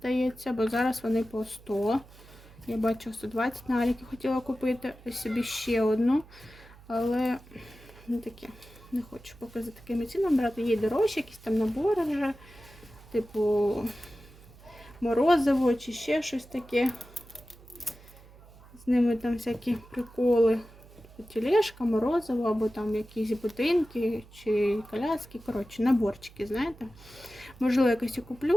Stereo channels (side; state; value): right; noise; hum, 22 dB below the sound